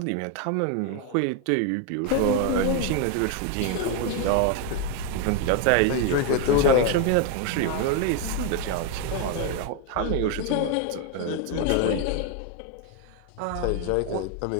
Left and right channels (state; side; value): different; both; correlation 0.01